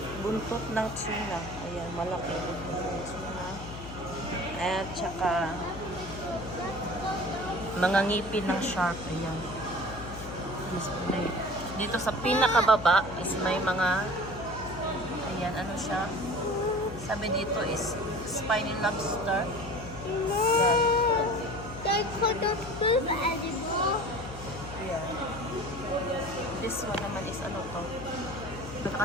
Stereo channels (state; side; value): noise; left; hum, 12 dB below the sound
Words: buntot ng tuna. Ayan, malaki buntot ng tuna. At saka mga ngipin ng shark. Ayan. Display. Dito sa pinakababa is may mga ayan, ano siya? Sabi dito is spiny lobster. Ayan. They couldn't move anymore. Ayan. This one naman is ano to?